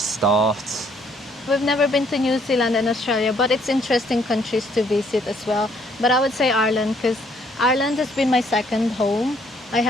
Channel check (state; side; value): normal; both; correlation 0.65